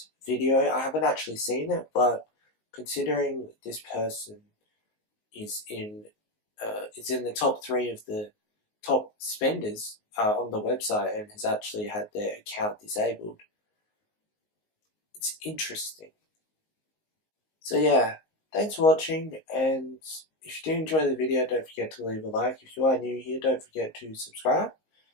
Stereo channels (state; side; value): late; right; 19 ms